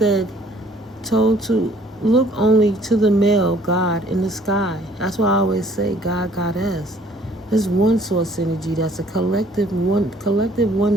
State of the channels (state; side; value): normal; both; correlation 0.58